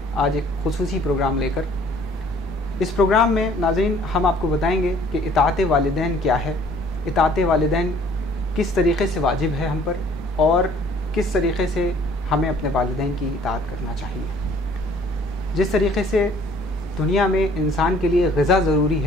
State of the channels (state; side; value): normal; both; correlation 0.56